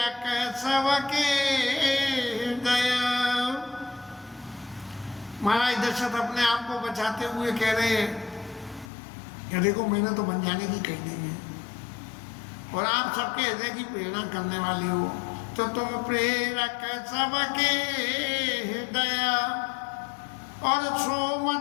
सबके दया। महाराज दशरथ अपने आप को बचाते हुए कह रहे हैं कि देखो, मैंने तो बन जाने की कही नहीं है, और आप सबके हृदय की प्रेरणा करने वाले हो, तो तुम प्रेरक सबके दया और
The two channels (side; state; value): right; drops out; at 8.9 s